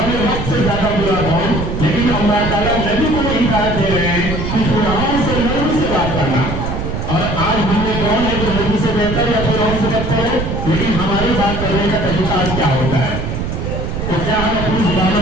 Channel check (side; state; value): right; noise; rumble, 4 dB below the sound